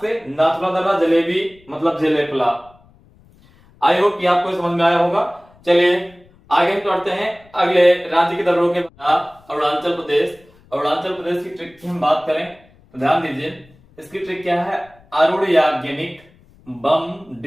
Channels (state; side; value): noise; left; rumble, 29 dB below the sound